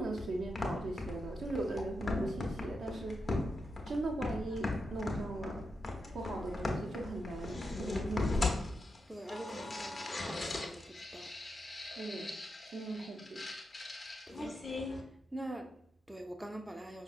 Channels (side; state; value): both; normal; correlation 0.86